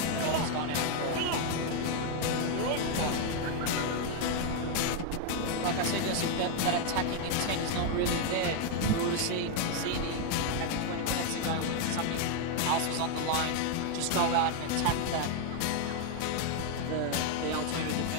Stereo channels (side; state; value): both; different; correlation 0.01